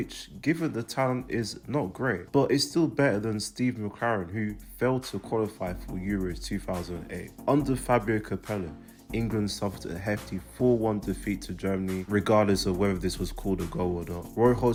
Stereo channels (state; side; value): identical; both; correlation 1.00